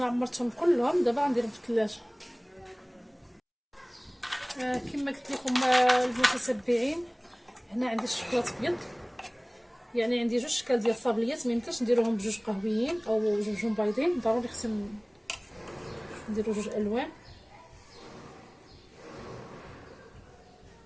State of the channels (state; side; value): identical; both; correlation 1.00